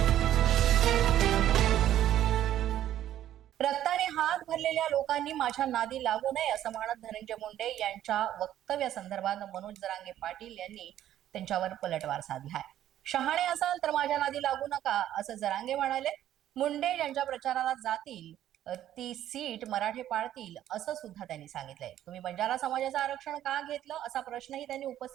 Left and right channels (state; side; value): quieter; left; 12.0 dB